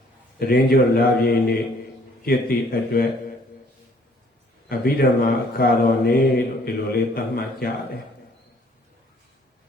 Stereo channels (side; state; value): both; normal; correlation 0.61